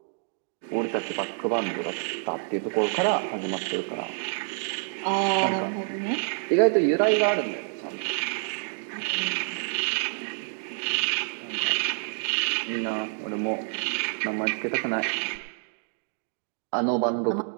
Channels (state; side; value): silent; left; 60 dB below the other